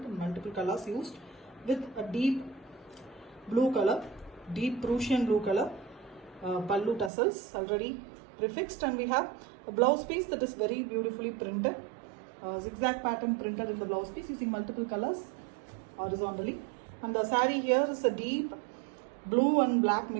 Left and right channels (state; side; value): drops out; left; at 7.1 s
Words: and multiple colors used, with a deep blue color, deep Prussian blue color pallu tassels already prefixed, and we have a blouse piece that is very beautifully printed, zigzag pattern printed in the blouse piece using multiple colors horizontally. And the saree here is a deep blue and black